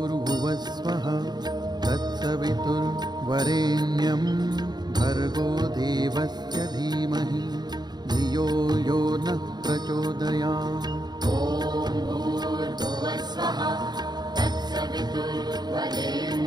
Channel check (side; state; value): left; late; 0.20 ms